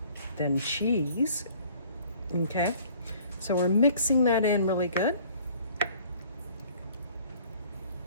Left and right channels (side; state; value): both; inverted; correlation -0.54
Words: than cheese. Okay, so we're mixing that in really good.